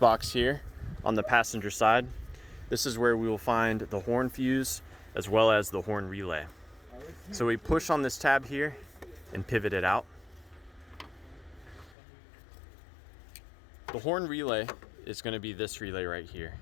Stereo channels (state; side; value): drops out; right; at 12.0 s